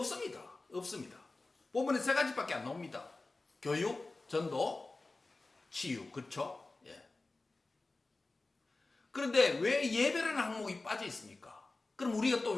없습니다. 본문에 세 가지밖에 안 나옵니다. 교육, 전도, 치유. 그렇죠? 예. 그런데 왜 예배라는 항목이 빠져 있습니까? 그럼 우리가 또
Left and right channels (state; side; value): quieter; right; 3.3 dB